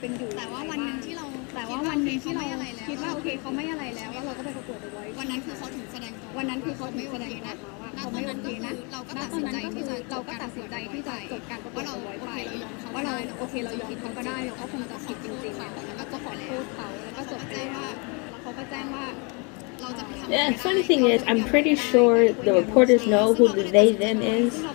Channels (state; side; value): quieter; right; 32.7 dB